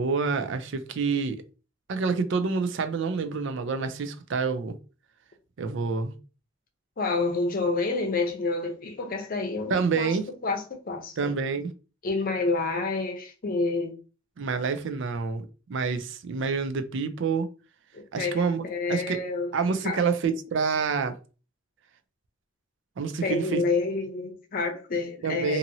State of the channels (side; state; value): both; normal; correlation 0.21